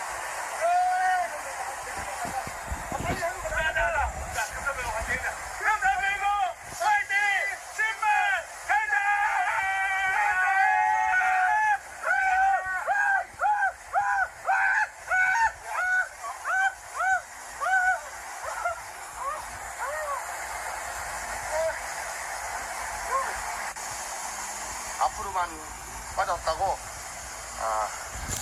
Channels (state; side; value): identical; both; correlation 1.00